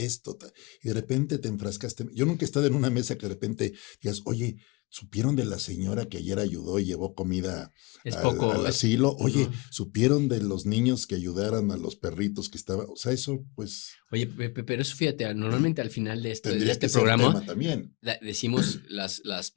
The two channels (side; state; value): right; quieter; 26.1 dB